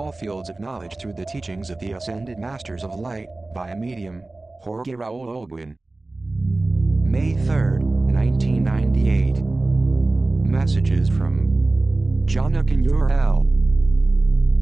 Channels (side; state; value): left; quieter; 3.0 dB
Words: fields of knowledge through the teachings of the Ascended Masters of Light, by medium, Jorge Raul Olguin. May 3, 1998. Messages from JOHNAKAN UR-EL.